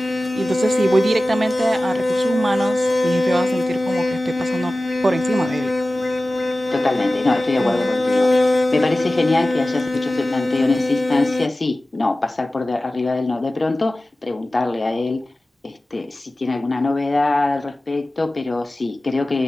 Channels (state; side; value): normal; both; correlation 0.96